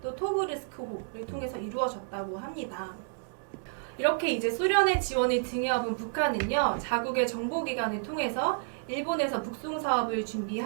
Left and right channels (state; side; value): silent; left; digital silence